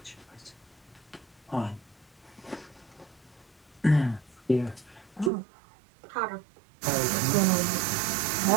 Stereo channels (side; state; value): left; drops out; at 5.3 s